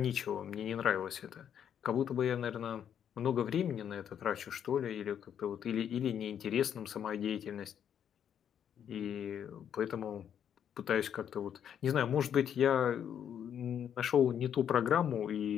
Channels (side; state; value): right; quieter; 8.9 dB